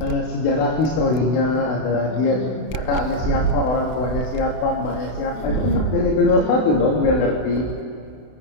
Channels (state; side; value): late; right; 32 ms